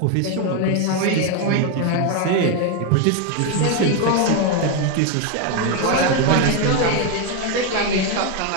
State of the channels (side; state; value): both; different; correlation 0.01